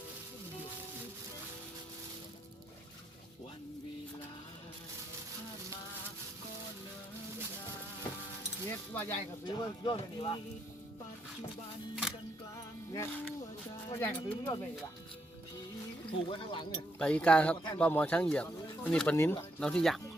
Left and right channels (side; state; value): both; normal; correlation 0.77